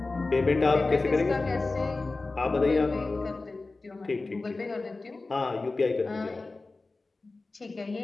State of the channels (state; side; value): quieter; right; 3.5 dB